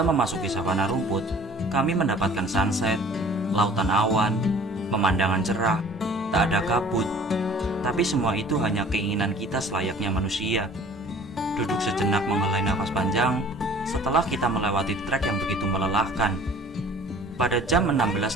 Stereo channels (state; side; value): normal; both; correlation 0.49